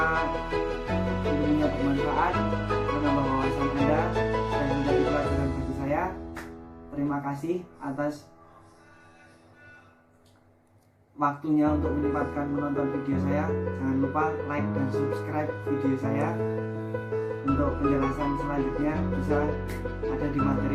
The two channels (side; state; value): both; identical; correlation 1.00